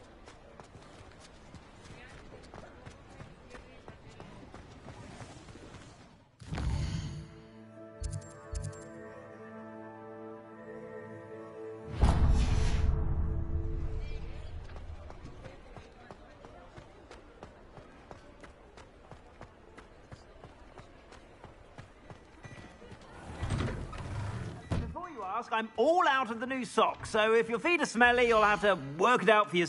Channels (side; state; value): both; identical; correlation 1.00